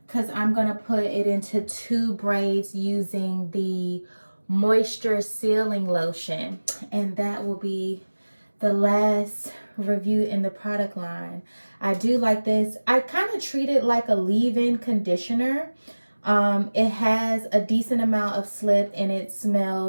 because I'm gonna put it into 2 braids using the moisture sealing lotion, and that will be the last review in the product line. I do like this. I kind of treat it like a leave-in conditioner. It has a decent amount of slip and it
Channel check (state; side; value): inverted; both; correlation -1.00